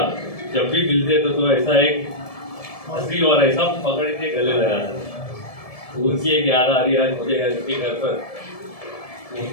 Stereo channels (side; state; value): right; late; 1.7 ms